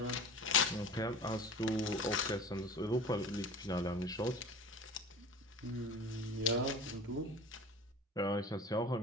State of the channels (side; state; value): both; normal; correlation 0.38